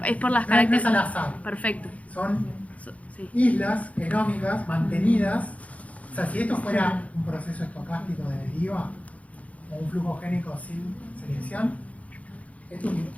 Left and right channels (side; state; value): right; late; 0.067 ms